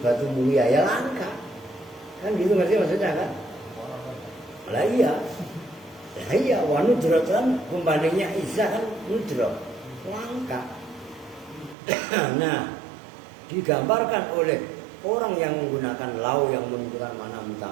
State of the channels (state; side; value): drops out; left; at 11.8 s